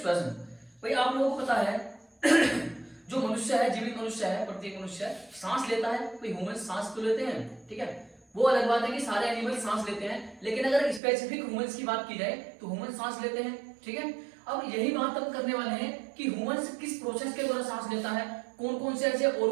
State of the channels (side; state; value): left; drops out; at 11.0 s